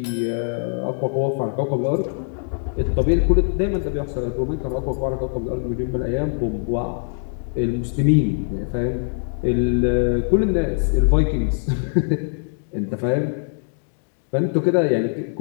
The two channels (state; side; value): silent; right; digital silence